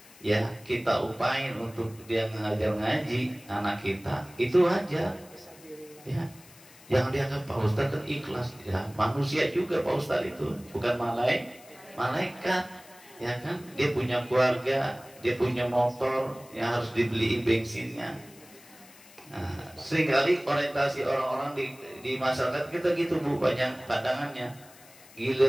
ya kita upain untuk dia ngajar ngaji anak kita, itu aja. Ya, yang dianggap Pak Ustadz kan ikhlas, ya manusia juga Pak Ustadz itu, bukan malaikat, ya kan? Dia punya keluarga, dia punya motor yang harus dibeliin bensinnya. Nah, seringkali orientasi orang-orang di masyarakat kita gitu Bu, banyak pandangannya.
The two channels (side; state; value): left; noise; hiss, 23 dB below the sound